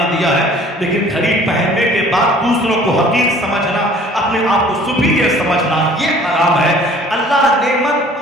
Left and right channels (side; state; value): both; normal; correlation 0.52